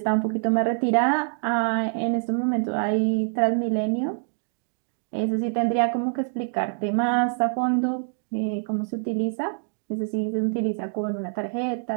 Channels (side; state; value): left; silent; 61 dB below the other